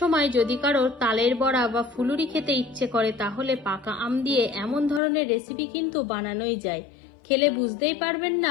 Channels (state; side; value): drops out; right; at 5.0 s